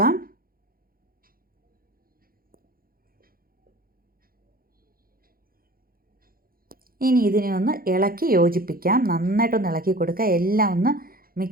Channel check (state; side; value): late; left; 0.42 ms